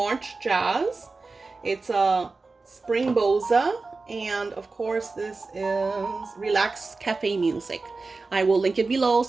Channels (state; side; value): quieter; left; 3.8 dB